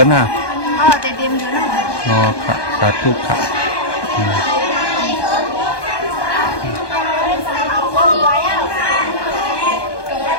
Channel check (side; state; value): right; late; 1.2 ms